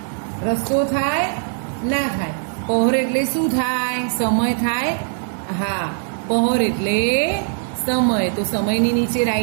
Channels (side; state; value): left; silent; 65 dB below the other